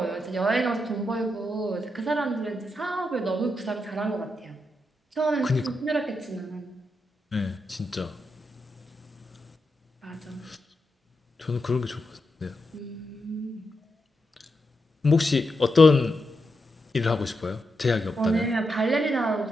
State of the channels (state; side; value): normal; both; correlation 0.85